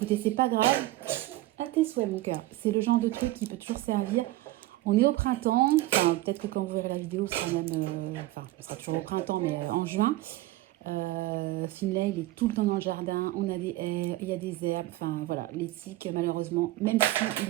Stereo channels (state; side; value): quieter; left; 16.9 dB